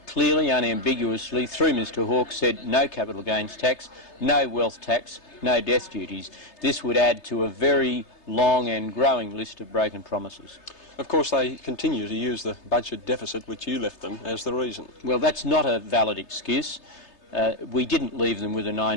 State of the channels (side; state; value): right; late; 3.3 ms